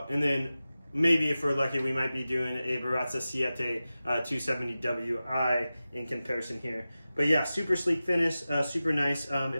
And then maybe if we're lucky, we might be doing a Baratza Siete 270WI in comparison here. But yeah, super sleek finish, super nice.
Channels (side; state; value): both; inverted; correlation -0.95